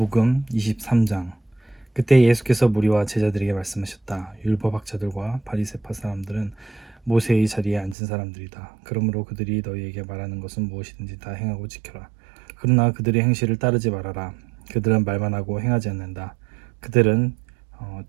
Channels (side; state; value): left; drops out; at 8.0 s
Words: 23장. 그때 예수께서 무리와 제자들에게 말씀하셨다. 율법학자들과 바리새파 사람들은 모세의 자리에 앉은 사람들이다. 그러므로 그들이 너희에게 말하는 것은 무엇이든지 다 행하고 지켜라. 그러나 그들의 행실을 따르지 말아라. 그들은 말만 하고 행하지 않는다. 그들은